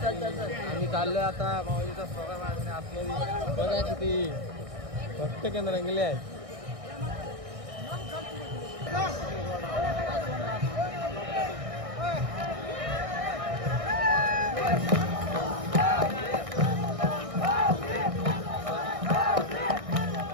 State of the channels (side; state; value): left; late; 1.6 ms